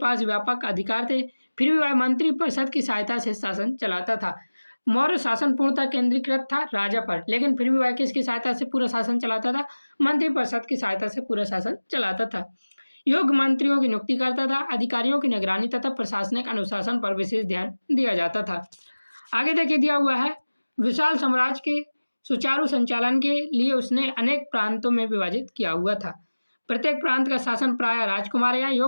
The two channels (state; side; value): inverted; both; correlation -1.00